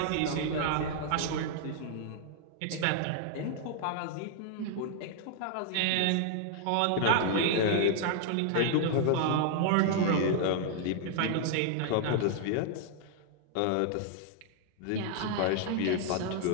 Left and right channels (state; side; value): different; both; correlation -0.01